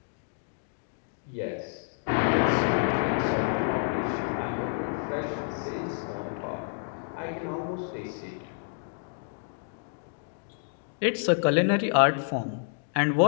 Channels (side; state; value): right; silent; digital silence